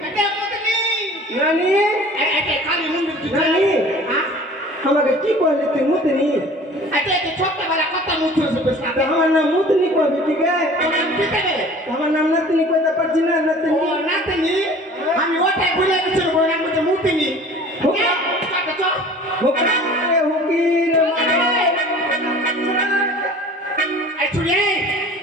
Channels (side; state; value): both; normal; correlation 0.46